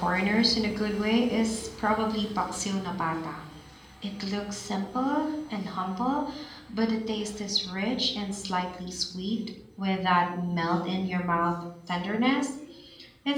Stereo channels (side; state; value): both; identical; correlation 1.00